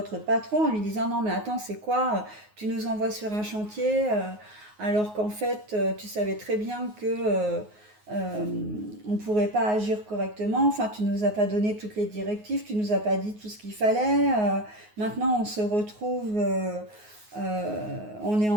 patron en lui disant non mais attends, c'est quoi, tu nous envoies sur un chantier alors qu'en fait tu savais très bien que euh, on ne pourrait pas agir correctement. Enfin, tu nous as pas donné toutes les directives, tu nous as pas dit tout ce qu'il fallait. Maintenant, on se retrouve, on est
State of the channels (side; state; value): left; late; 9.5 ms